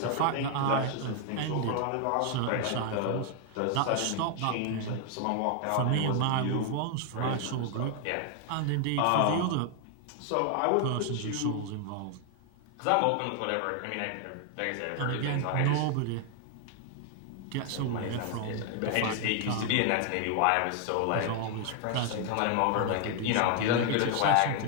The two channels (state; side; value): different; both; correlation 0.00